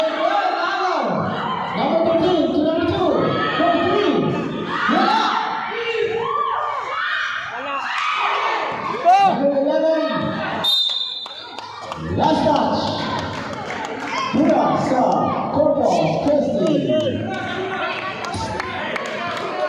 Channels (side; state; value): both; identical; correlation 1.00